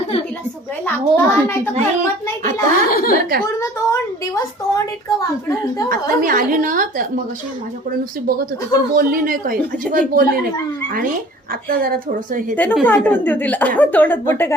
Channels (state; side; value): normal; both; correlation 0.49